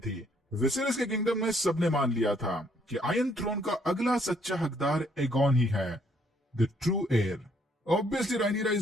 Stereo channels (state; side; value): normal; both; correlation 0.68